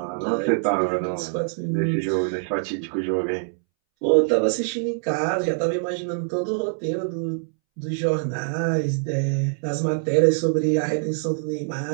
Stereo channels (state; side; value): silent; left; 63 dB below the other